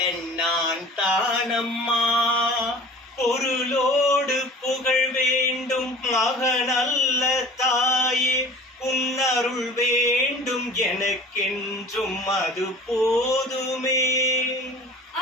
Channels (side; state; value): both; normal; correlation 0.43